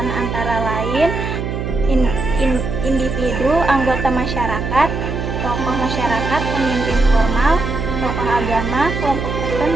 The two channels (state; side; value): noise; right; hum, 4 dB below the sound